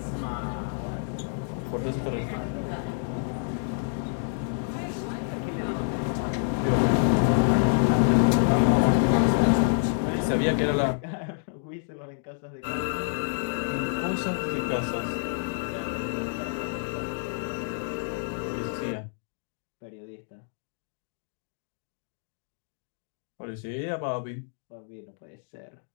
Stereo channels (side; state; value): right; silent; digital silence